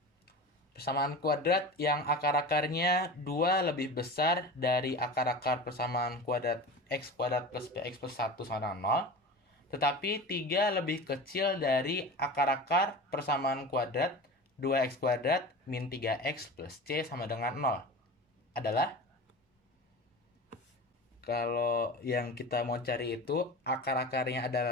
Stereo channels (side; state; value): both; normal; correlation 0.32